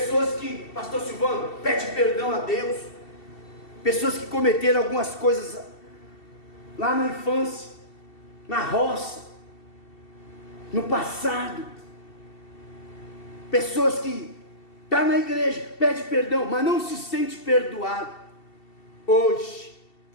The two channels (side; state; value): right; late; 2.7 ms